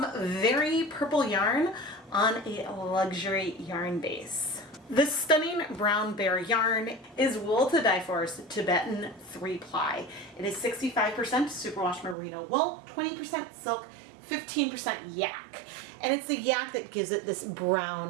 very purple yarn on a luxury yarn base. This stunning brown bear yarn is wool to Dyepot's Tibetan 3-ply. It is 65% Superwash merino wool, 20% silk, 15% yak, and it's the yak that gives it this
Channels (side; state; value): left; drops out; at 12.2 s